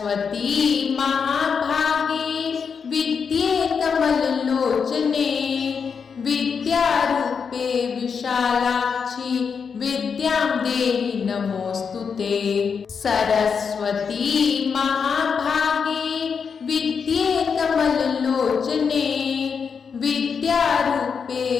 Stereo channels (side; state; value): right; quieter; 6.1 dB